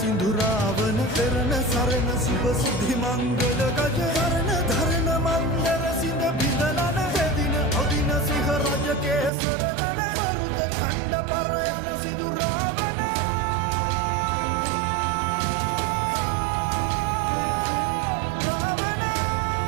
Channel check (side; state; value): left; drops out; at 9.3 s